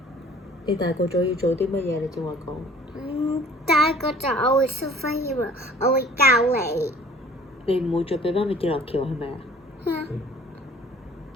你大個咗要做啲乜嘢？你正話講。大個就我會 superhero，我會教你。你唔會再俾媽咪跌落橋係咪啊？嗯。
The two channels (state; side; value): normal; both; correlation 0.51